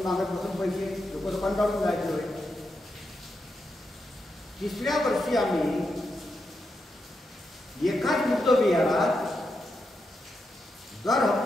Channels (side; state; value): both; normal; correlation 0.85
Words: मागत बसून पैसे लोक कंटाळून जायचे होते. तिसऱ्या वर्षी आम्ही एकाच बुद्ध विहारात दर